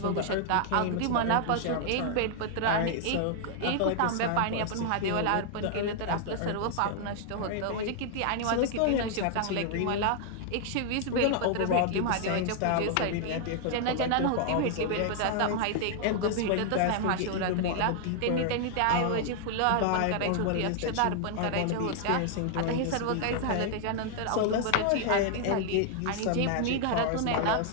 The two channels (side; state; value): both; different; correlation -0.01